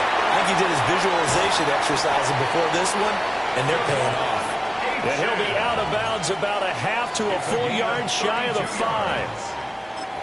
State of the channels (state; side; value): identical; both; correlation 1.00